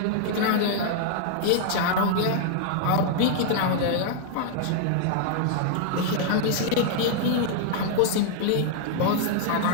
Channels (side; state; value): both; different; correlation 0.00